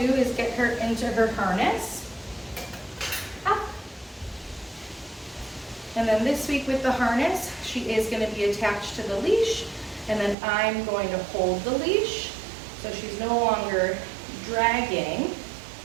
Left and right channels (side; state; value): left; drops out; at 10.4 s